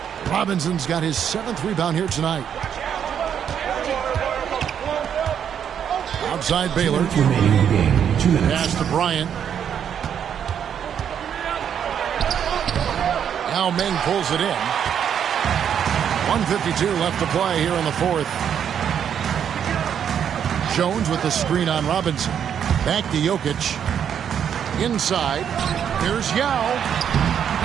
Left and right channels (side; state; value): left; quieter; 8.5 dB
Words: Robinson's got his 7th rebound here tonight. Outside Baylor. Pass to Bryant. Now Meng pulls it in. 1:52 left to play here in the 4th. Jones with the screen on Robinson. Back to Jokic. Inside. Here's Yao.